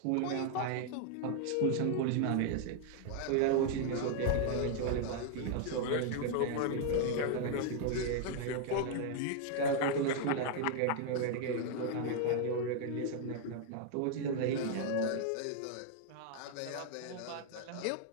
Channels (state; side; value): different; both; correlation 0.00